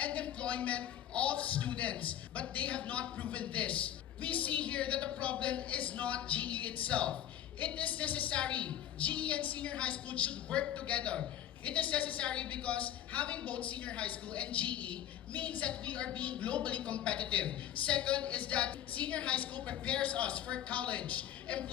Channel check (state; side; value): quieter; right; 11.3 dB